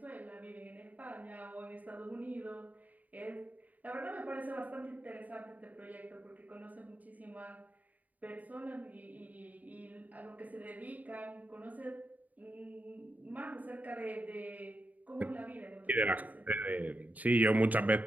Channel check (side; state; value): left; late; 0.075 ms